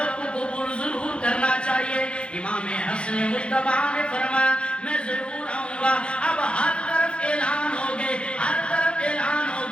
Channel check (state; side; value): late; right; 0.057 ms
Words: کو قبول ضرور کرنا چاہیے۔ امام حسن مجتبی نے فرمایا میں ضرور آؤں گا۔ اب ہر طرف اعلان ہو گئے، ہر طرف اعلان ہو